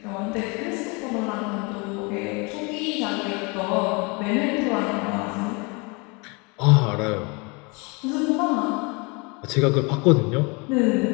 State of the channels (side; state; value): right; quieter; 29.5 dB